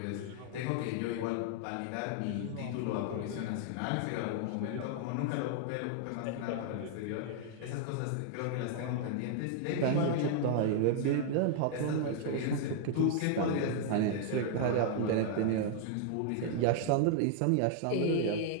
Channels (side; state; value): both; different; correlation -0.01